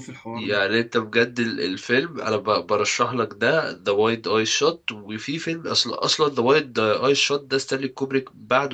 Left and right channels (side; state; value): both; identical; correlation 1.00